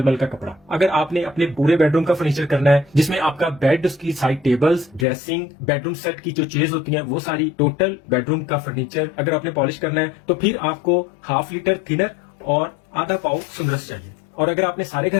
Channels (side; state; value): right; drops out; at 5.1 s